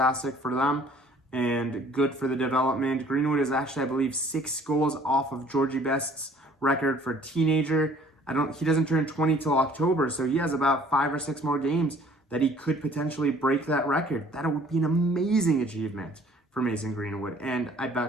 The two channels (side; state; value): both; normal; correlation 0.55